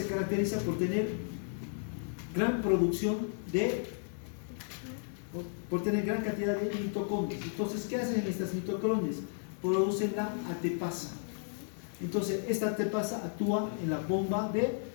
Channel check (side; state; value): right; silent; 55 dB below the other